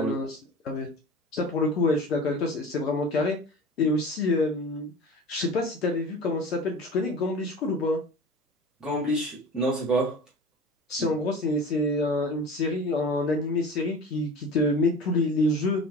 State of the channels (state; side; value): normal; both; correlation 0.37